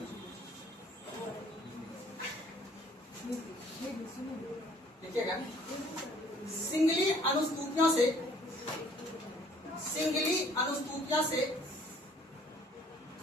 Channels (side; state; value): both; normal; correlation 0.58